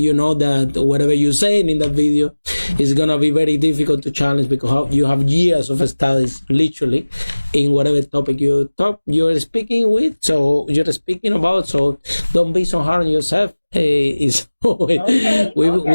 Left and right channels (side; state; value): both; inverted; correlation -1.00